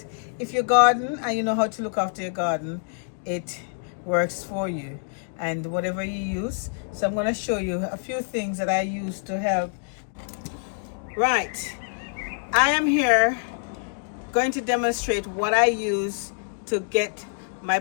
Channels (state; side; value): silent; right; digital silence